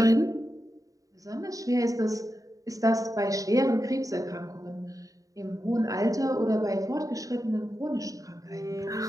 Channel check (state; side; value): late; left; 0.16 ms